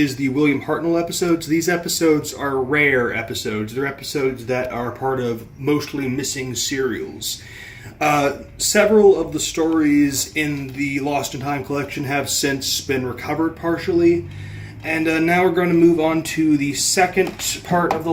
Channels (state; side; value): identical; both; correlation 1.00